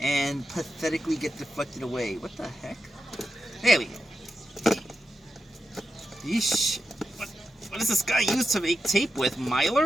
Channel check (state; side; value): normal; both; correlation 0.89